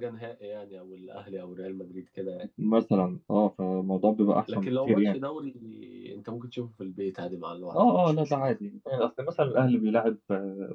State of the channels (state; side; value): identical; both; correlation 1.00